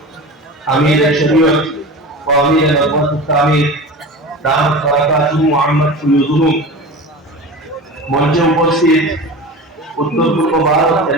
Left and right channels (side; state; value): both; normal; correlation 0.32